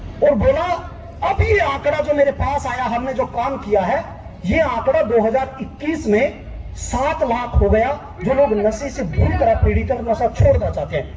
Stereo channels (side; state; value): both; identical; correlation 1.00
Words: और बोला अब ये आंकड़ा जो मेरे पास आया, हमने जो काम किया है, ये आंकड़ा 2021 में 7 लाख हो गया, जो लोग नशे से बुरी तरह पीड़ित और नशा छोड़ना चाहते